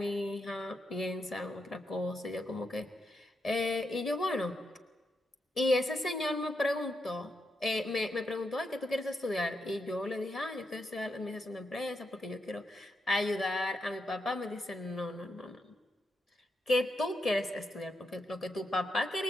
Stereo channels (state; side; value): normal; both; correlation 0.83